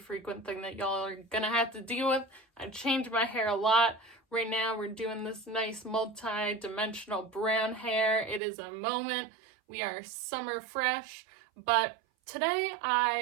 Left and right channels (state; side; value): drops out; left; at 8.4 s